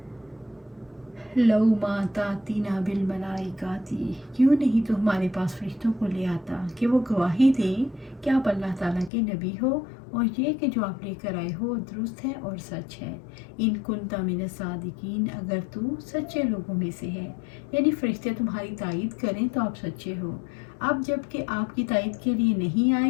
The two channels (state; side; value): drops out; right; at 9.1 s